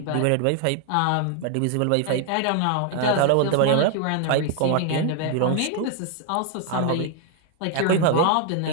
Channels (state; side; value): different; both; correlation 0.00